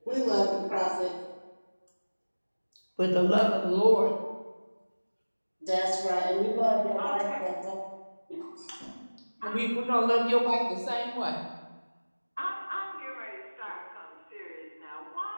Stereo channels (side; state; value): both; inverted; correlation -1.00